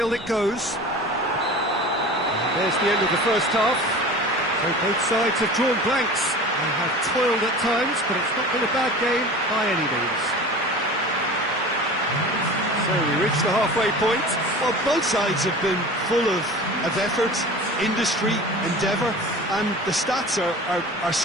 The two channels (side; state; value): both; normal; correlation 0.37